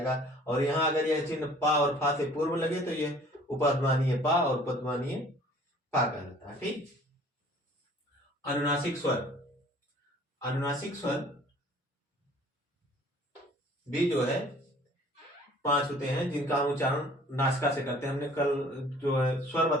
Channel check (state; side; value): normal; both; correlation 0.52